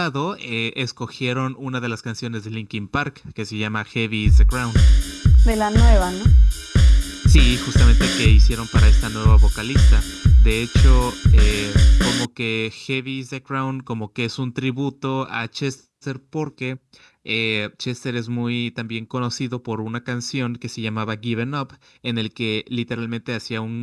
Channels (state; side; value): identical; both; correlation 1.00